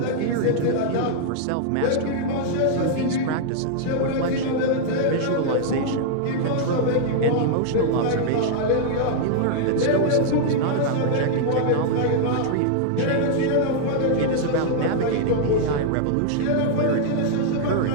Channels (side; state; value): both; different; correlation -0.01